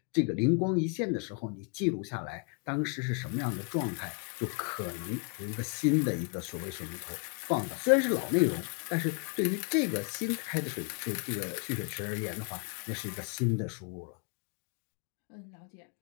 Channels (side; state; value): right; quieter; 36.6 dB